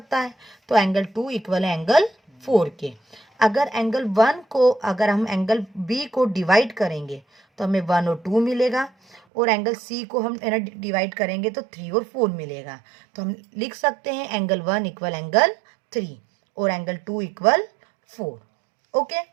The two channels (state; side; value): drops out; left; at 9.2 s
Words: है. तो एंगल 2 इक्वल है एंगल 4 के. अगर एंगल 1 को अगर हम एंगल B को डिवाइड करेंगे तो हमें 1 और 2 मिलेगा और एंगल C को हम डिवाइड करेंगे तो 3 और 4 मिलेगा. तो हम लिख सकते हैं एंगल 1 इक्वल एंगल 3 और एंगल 2 इक्वल 4. ओके.